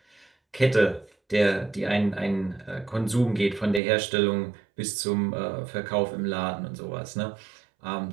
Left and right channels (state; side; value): drops out; left; at 3.8 s